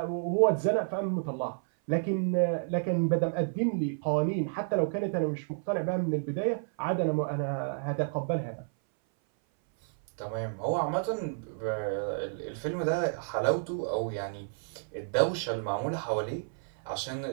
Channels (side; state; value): left; silent; 57 dB below the other